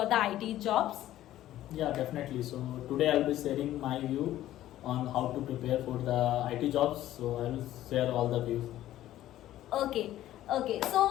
the IT jobs. Yeah, definitely. So today I'll be sharing my view on how to prepare for the IT jobs. So I will share all the views. Okay.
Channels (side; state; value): right; quieter; 13.6 dB